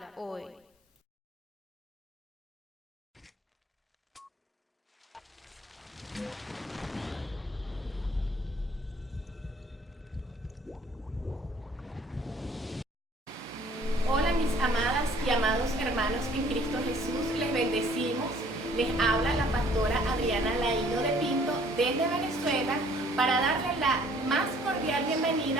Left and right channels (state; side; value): normal; both; correlation 0.57